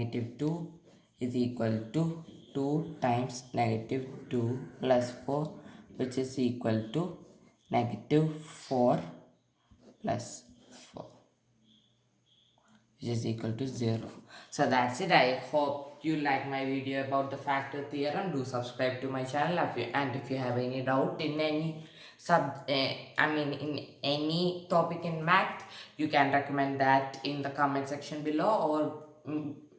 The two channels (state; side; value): identical; both; correlation 1.00